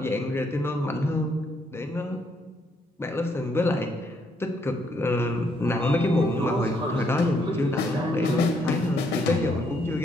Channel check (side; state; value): both; normal; correlation 0.72